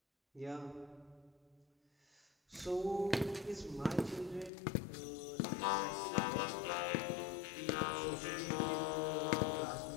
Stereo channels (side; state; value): right; drops out; at 4.5 s